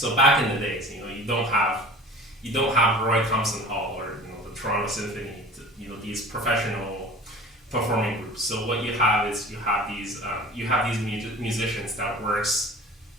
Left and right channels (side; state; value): both; normal; correlation 0.41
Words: back in the days, you don't have Roy Thompson Hall or the Toronto Symphony, these professional performing groups. So what you have is you have these musicians that works